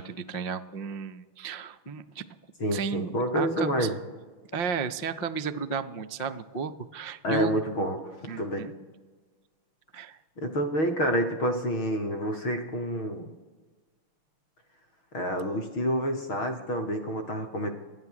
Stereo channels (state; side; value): late; right; 5.8 ms